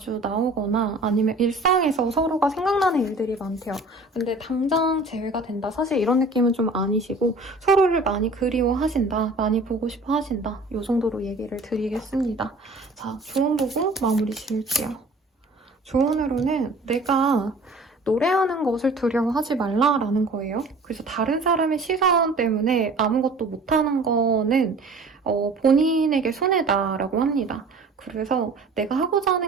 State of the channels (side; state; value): left; quieter; 3.0 dB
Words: 나오거나 아니면 일상에서 서로가 생각나는 일들이 많대요. 근데 당장 재회가 된다. 사실 이런 느낌은 좀 아니시고 서로를 많이 그리워하신다. 많이 보고 싶어 하신다. 이 정도로 얘기를 드리겠습니다. 자, 조언 보고 마무리 지을게요. 조언으로는 내가 노래하는 것을 두려워하지 말라라는 거예요. 그래서 다른 사람의 시선 때문에 아무것도 못하는 거는 본인에게 손해다라고 합니다. 그래서 내가 하고자